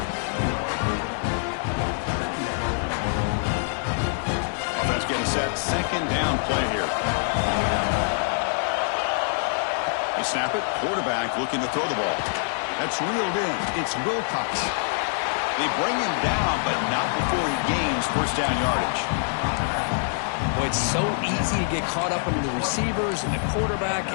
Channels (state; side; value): silent; right; digital silence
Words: Getting set second down play here. They snap it. Quarterback looking to throw the ball. That's reeled in. It's Wilcox. They bring him down, but not before he gains first down yardage. Boy, it's so easy to get caught up under the receivers and the quarterback,